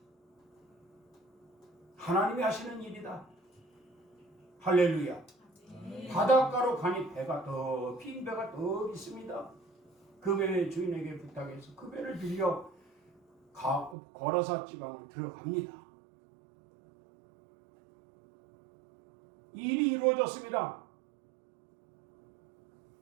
하나님이 하시는 일이다. 할렐루야. 바닷가로 가니 빈 배가 더 있습니다. 그 배의 주인에게 부탁해서 그 배를 빌려 거라사 지방을 들어갑니다. 일이 이루어졌습니다.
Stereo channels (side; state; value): left; drops out; at 14.0 s